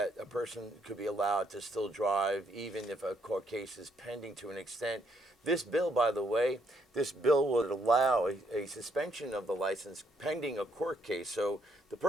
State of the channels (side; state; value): both; normal; correlation 0.73